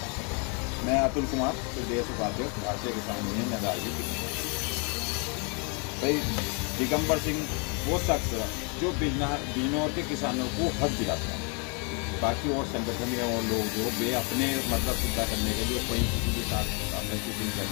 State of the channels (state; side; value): quieter; right; 35.3 dB